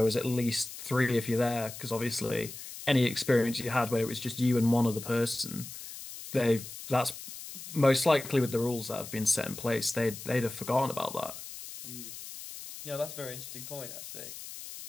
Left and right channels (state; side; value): noise; left; hiss, 12 dB below the sound